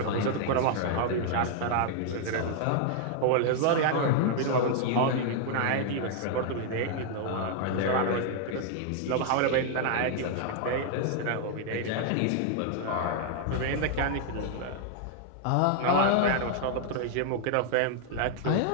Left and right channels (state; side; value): different; both; correlation 0.00